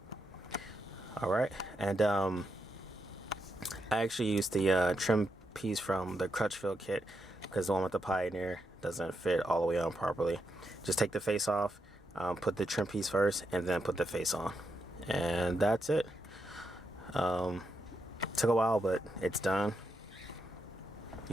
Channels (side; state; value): both; normal; correlation 0.83